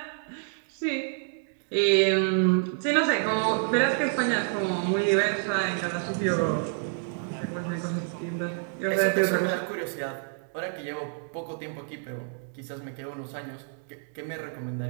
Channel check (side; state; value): left; silent; 59 dB below the other